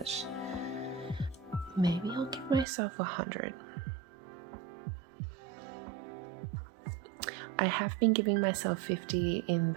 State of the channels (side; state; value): left; drops out; at 2.7 s